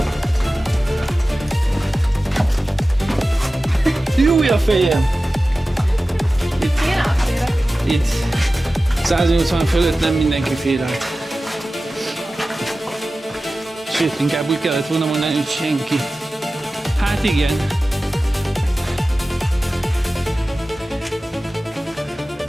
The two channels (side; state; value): both; normal; correlation 0.95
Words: Júj a fejem! Itt 180 fölött nem mindenki fér át. Sőt, inkább úgy kellett volna mondani, hogy senki. Hát igen.